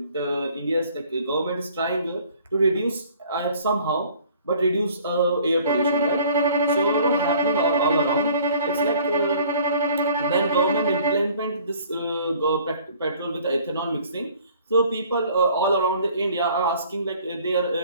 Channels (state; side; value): inverted; both; correlation -0.54